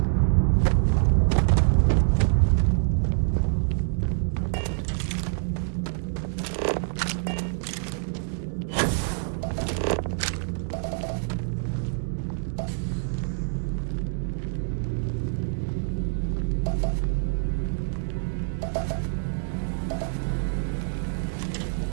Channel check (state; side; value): silent; left; digital silence